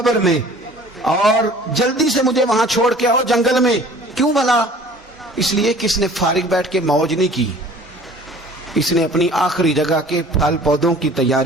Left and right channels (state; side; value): normal; both; correlation 0.48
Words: میں اور جلدی سے مجھے وہاں چھوڑ کے آؤ جنگل میں۔ کیوں بھلا؟ اس لیے کہ اس نے فارغ بیٹھ کے موج نہیں کی، اس نے اپنی آخری جگہ کے پھل پودوں کی